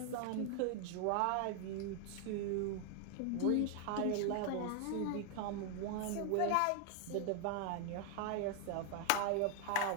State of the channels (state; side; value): different; both; correlation 0.00